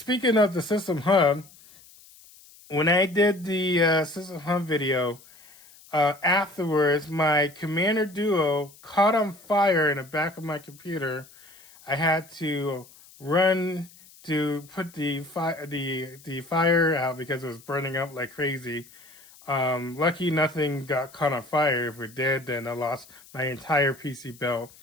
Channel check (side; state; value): left; noise; hiss, 24 dB below the sound